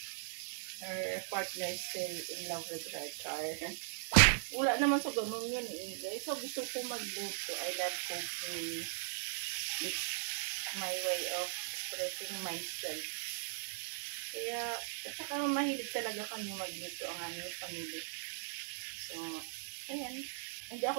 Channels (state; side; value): silent; left; digital silence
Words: her partner is still in love with her char. Wala naman sa ganun yun eh. Guys, so gusto ko magluto. I love cooking. It's my way of expressing myself. Kaya, at saka mahilig talaga kami magluto ang aming family. So, ayan. Hindi